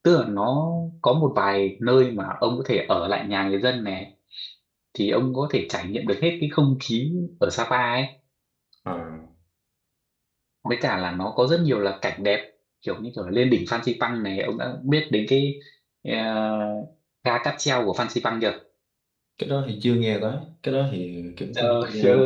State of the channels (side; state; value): both; identical; correlation 1.00